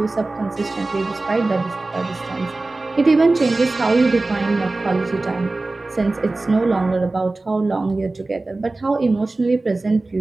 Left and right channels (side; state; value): left; quieter; 3.2 dB